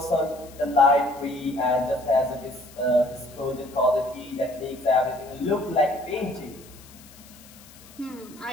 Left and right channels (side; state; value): left; noise; hiss, 22 dB below the sound